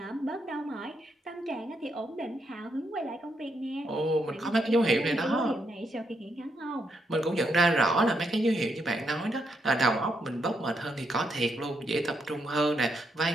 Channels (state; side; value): normal; both; correlation 0.79